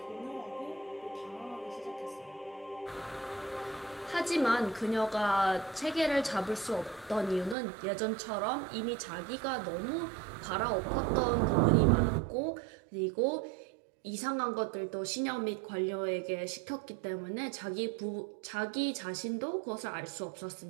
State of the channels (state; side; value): drops out; left; at 7.6 s